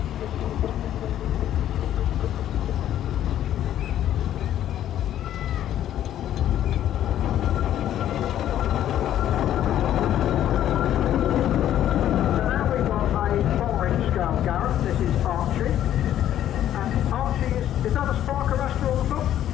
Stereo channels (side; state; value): right; quieter; 11.5 dB